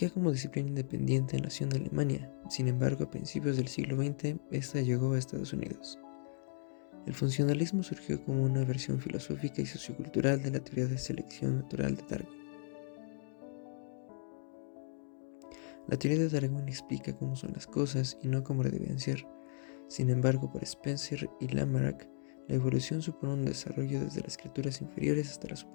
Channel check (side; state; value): right; silent; digital silence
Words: como disciplina independiente nació en Alemania, sin embargo a principios del siglo XX esta llegó a Estados Unidos. El funcionalismo surgió como una versión filosófica y sociocultural de la teoría de selección natural de Darwin. La teoría de Darwin explica cómo son las cosas y no cómo deben ser. Sin embargo, para Spencer y Lamarck, la evolución supone un desarrollo desde las criaturas inferiores hasta las